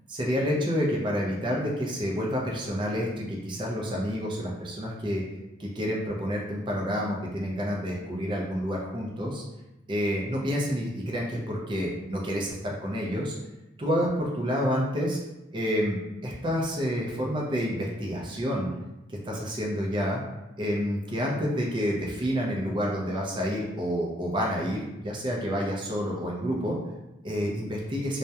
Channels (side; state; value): both; normal; correlation 0.69